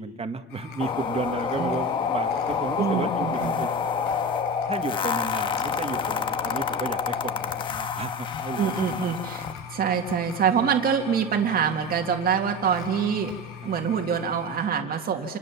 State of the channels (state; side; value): normal; both; correlation 0.26